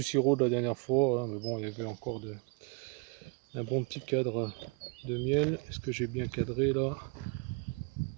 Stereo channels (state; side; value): quieter; left; 32.0 dB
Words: sirop de la dernière fois, hein, mais bon, il y avait encore un bon petit cadre de miel. Est-ce que j'ai bien cadré là?